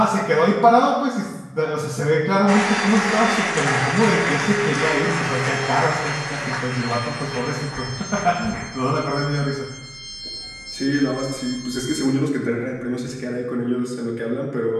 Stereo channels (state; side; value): identical; both; correlation 1.00